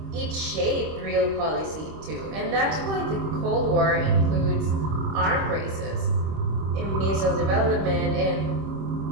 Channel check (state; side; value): late; left; 25 ms